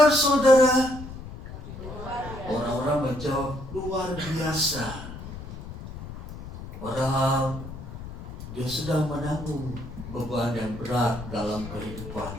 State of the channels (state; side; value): noise; left; rumble, 11 dB below the sound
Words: saudara?" Orang-orang menjawab, "Luar biasa." Padahal dia sedang menanggung beban yang berat dalam